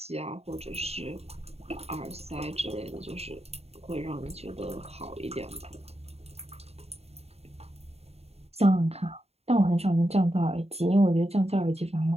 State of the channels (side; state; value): left; late; 0.30 ms